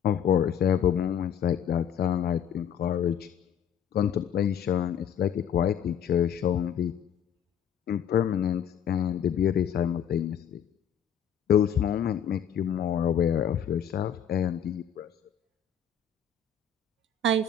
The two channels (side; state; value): right; quieter; 7.8 dB